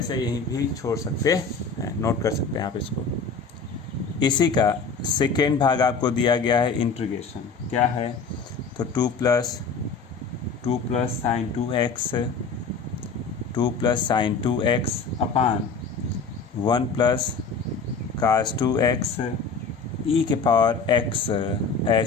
यहीं भी छोड़ सकते हैं, नोट कर सकते हैं आप इसको। इसी का सेकेंड भाग आपको दिया गया है इंटीग्रेशन। क्या है? तो 2 plus sine 2x sine 2x upon 1 plus cos 2x e के पावर x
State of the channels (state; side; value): quieter; right; 4.7 dB